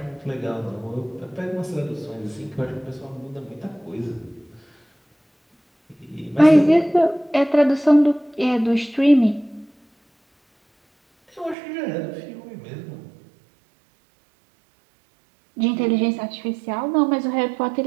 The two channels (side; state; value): left; drops out; at 11.6 s